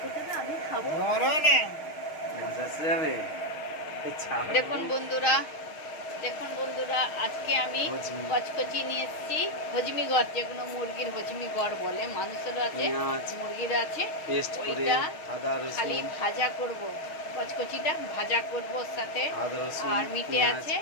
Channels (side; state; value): right; late; 6.4 ms